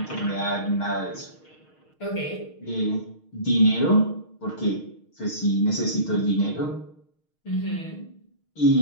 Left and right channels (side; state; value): right; late; 6.5 ms